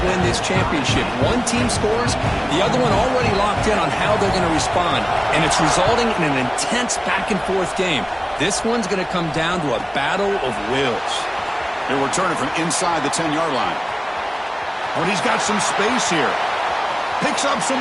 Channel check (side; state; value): both; identical; correlation 1.00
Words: win this championship. One team scores, the other one already locked in on how they're going to respond. And it's resulting in an intense back-and-forth game. This one's going to come down to a battle of wills. They're returning from inside the 10-yard line. But he's got some space here. Picks up some